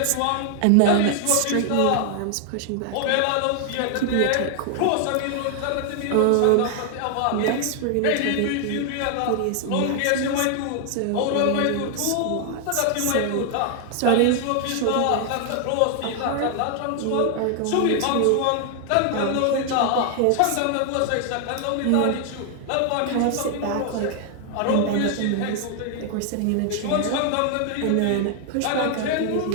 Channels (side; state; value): both; different; correlation 0.00